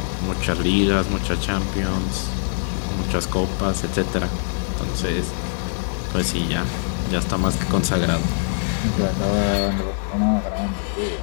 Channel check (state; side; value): silent; right; digital silence